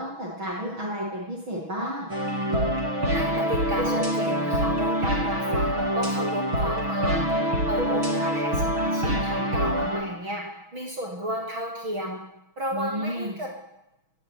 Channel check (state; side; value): late; left; 6.2 ms